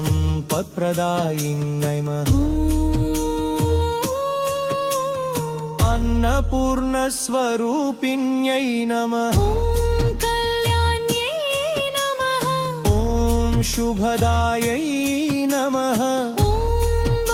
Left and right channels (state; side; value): identical; both; correlation 1.00